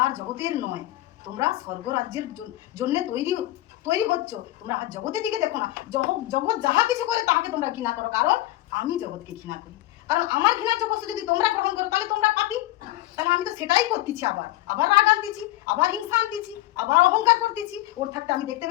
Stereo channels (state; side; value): quieter; right; 16.6 dB